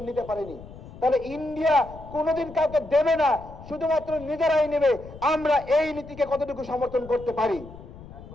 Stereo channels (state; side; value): noise; left; rumble, 16 dB below the sound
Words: নিতে পারেনি। তাহলে ইন্ডিয়া কোনোদিন কাউকে দেবে না, শুধুমাত্র নিজেরাই নেবে। আমরা এই নীতিকে কতটুকু সমর্থন করতে পারি?